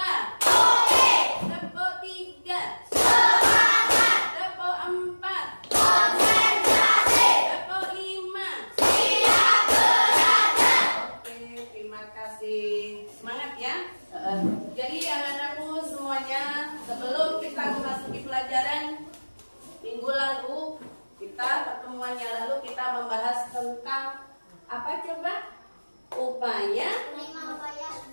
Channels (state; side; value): inverted; both; correlation -1.00